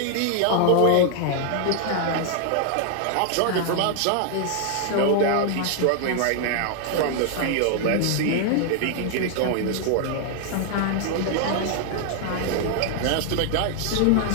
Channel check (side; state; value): both; different; correlation 0.00